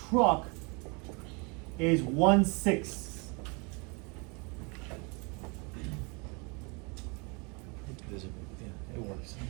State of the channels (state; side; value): quieter; left; 31.1 dB